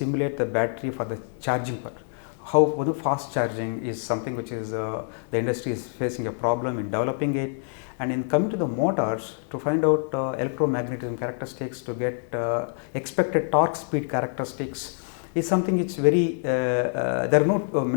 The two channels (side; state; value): right; silent; 56 dB below the other